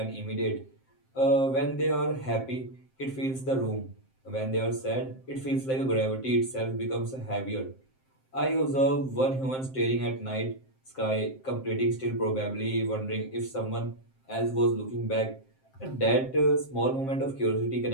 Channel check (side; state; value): right; late; 7.6 ms